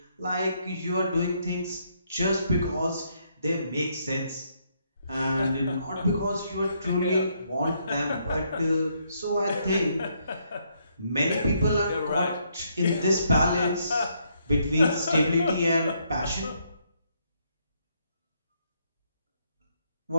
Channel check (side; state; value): both; inverted; correlation -0.73